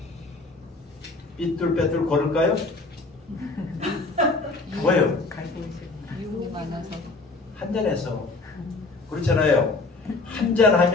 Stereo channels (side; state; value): right; quieter; 3.5 dB